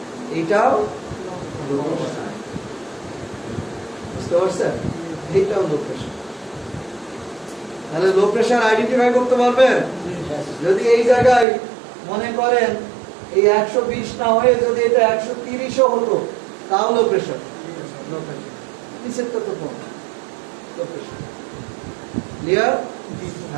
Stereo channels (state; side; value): drops out; left; at 11.5 s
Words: এটাও লো প্রেসার। বুঝতে পারছেন? এটাও লো প্রেসার। তাহলে লো প্রেসার আইডেন্টিফাই করতে পারবেন? যদি এই জায়গায় মনে করেন এই 120 না হয়ে যদি এটা 130ও হতো, তাও লো প্রেসার। নিচেরটা তো কম, লো প্রেসার। ক্লিয়ার?